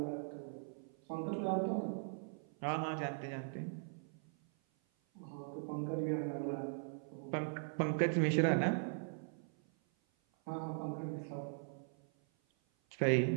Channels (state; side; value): silent; left; 51 dB below the other